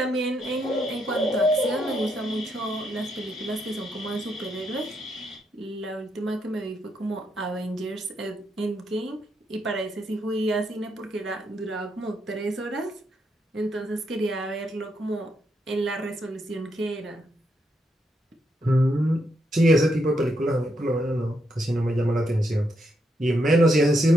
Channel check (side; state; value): both; normal; correlation 0.79